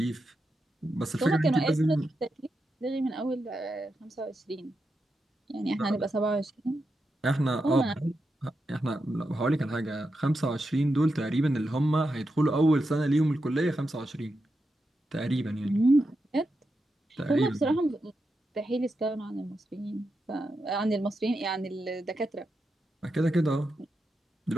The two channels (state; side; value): normal; both; correlation 0.87